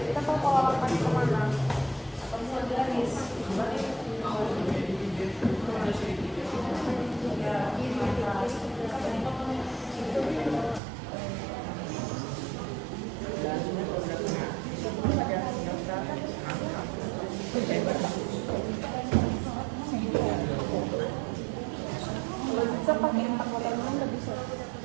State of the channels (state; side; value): drops out; left; at 10.8 s